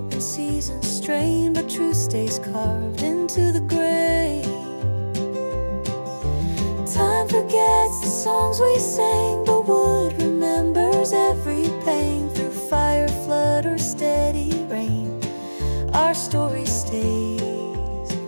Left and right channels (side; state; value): both; inverted; correlation -1.00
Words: and seasons strain, but truth stays carved into the grain. Time forgets the songs we sang, but wood remembers every pain. Through fire, flood, or steady rain, our story stays